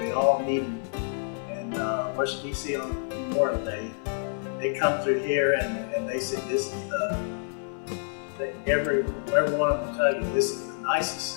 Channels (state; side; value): silent; right; 59 dB below the other